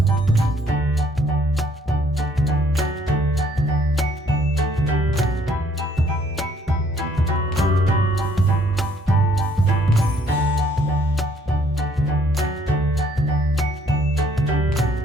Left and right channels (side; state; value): both; normal; correlation 0.64